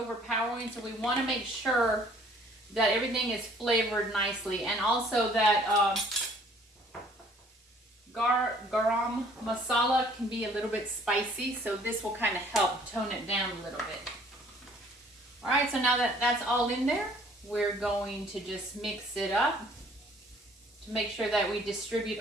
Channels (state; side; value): normal; both; correlation 0.57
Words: so we want to make sure that everything is flavored nicely, and also that garam masala can be a little bit spicy, so this will kind of help tone it down a little bit. All right, so now that that's all in there, we're going to just mix it up to make sure that we distribute